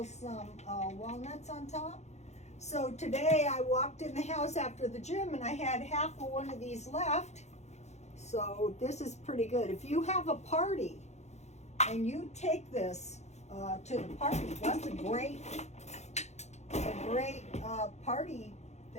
some walnuts on top. So today I walked in the house after the gym and I had half of one of these left. So this is pretty good. If you have a party and you take this to the party, that's a great party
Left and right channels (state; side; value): late; right; 0.33 ms